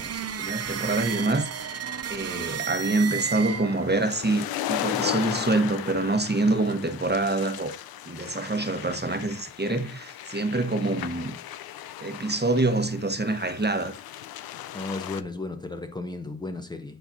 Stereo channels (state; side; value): normal; both; correlation 0.43